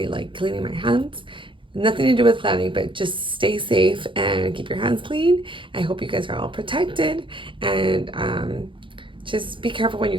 cleaning my hands. Nothing to do with planning, but just stay safe and keep your hands clean. I hope you guys are all protected, and just be careful when you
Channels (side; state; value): left; late; 0.24 ms